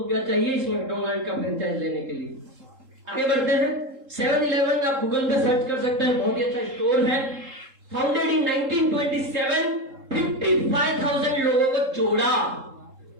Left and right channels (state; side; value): late; left; 3.8 ms